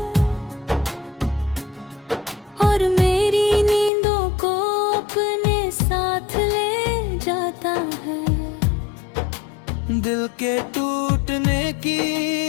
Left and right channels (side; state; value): right; drops out; at 3.9 s